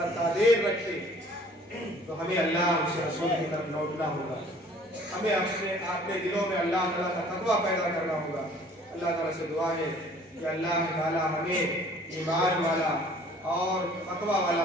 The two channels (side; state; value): both; normal; correlation 0.53